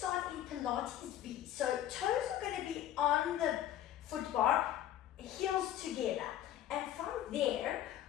in Pilates V. So toes are going to be on the foot bar, heels together. And from there,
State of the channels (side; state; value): right; quieter; 11.9 dB